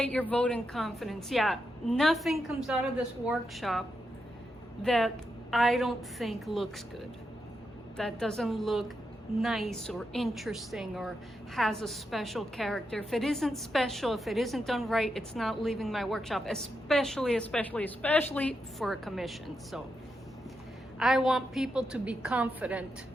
your vote and confidence. Yeah, nothing comes out of this workshop that I don't think looks good. That doesn't look nice or interesting or has a special character. If it isn't special, if it isn't done right, it's not leaving my workshop, especially for a commission. So I want people to be confident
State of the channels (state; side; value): normal; both; correlation 0.85